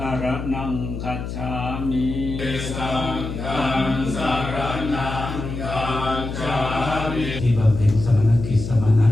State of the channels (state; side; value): noise; left; hum, 6 dB below the sound